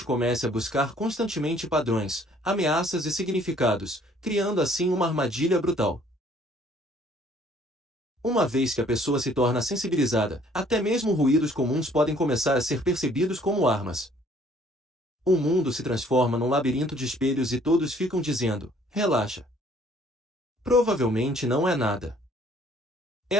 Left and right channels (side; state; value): both; normal; correlation 0.59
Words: comece a buscar constantemente padrões, ameaças e significados, criando assim uma armadilha brutal. Uma vez que a pessoa se torna sensibilizada, até mesmo ruídos comuns podem começar a ser percebidos como armas. O mundo se transforma num labirinto de espelhos e todos ficam dizendo: relaxa. Provavelmente não é nada.